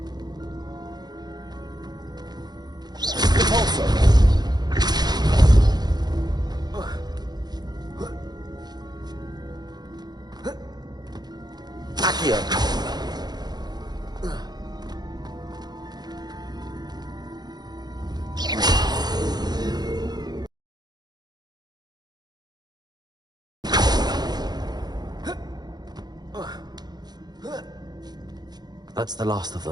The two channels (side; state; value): left; late; 0.20 ms